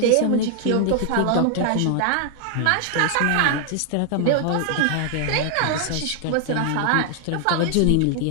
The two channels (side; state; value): both; different; correlation 0.00